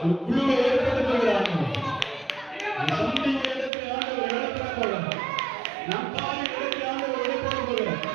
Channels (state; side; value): drops out; left; at 3.7 s